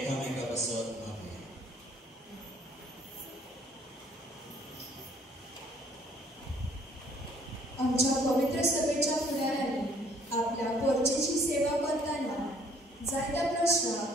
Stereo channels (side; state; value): both; normal; correlation 0.60